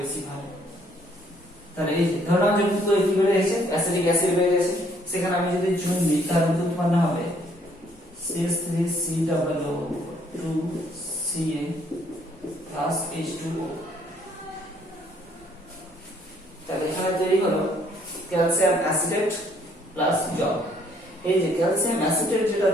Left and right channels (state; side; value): normal; both; correlation 0.65